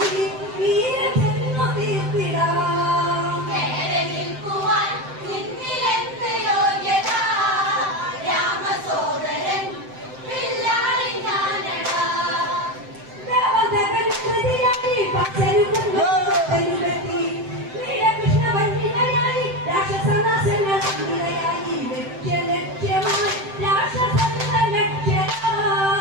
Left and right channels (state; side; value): late; left; 7.7 ms